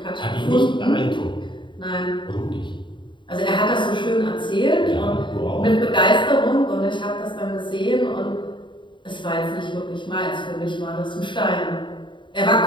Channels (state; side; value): late; right; 0.23 ms